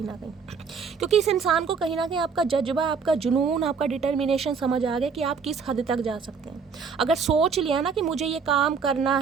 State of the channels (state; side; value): quieter; left; 5.7 dB